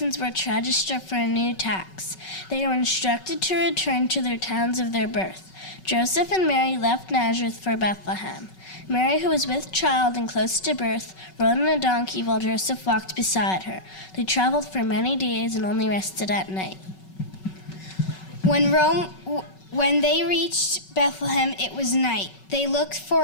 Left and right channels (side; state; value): right; late; 5.3 ms